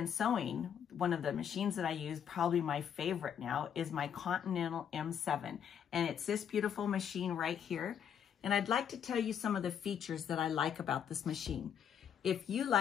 sewing, one of the machines that I use, probably my favorite now, is my Continental M7. And it's this beautiful machine right here. And I'd like to tell you some of the features that I like about this machine. If you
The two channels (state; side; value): quieter; right; 8.6 dB